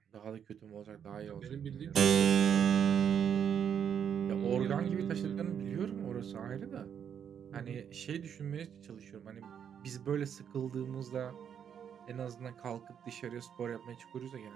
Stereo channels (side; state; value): left; quieter; 8.2 dB